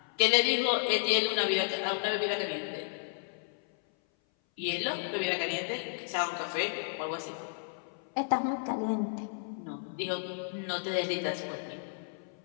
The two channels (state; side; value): silent; right; 56 dB below the other